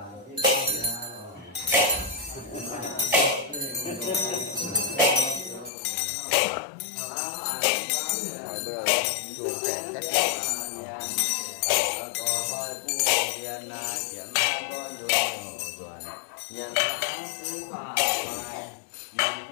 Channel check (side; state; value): right; drops out; at 5.7 s